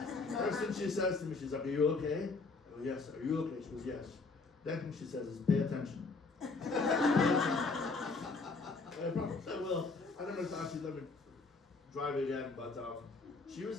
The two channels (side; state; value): right; quieter; 4.0 dB